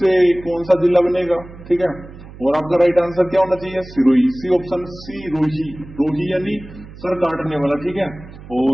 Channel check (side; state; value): right; noise; hum, 17 dB below the sound